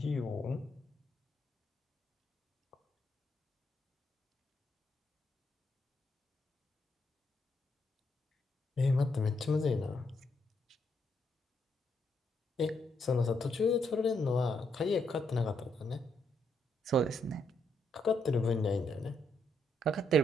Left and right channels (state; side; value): normal; both; correlation 0.76